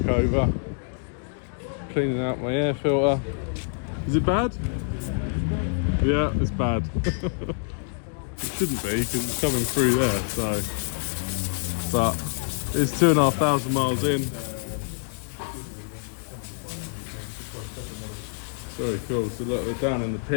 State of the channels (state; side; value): silent; right; digital silence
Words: over. Cleaning out my air filter. Is it bad? Yeah, it's bad. It shouldn't be because it's coming through there. So, but it's 2,500 miles in. Very cool. So look, they're down in the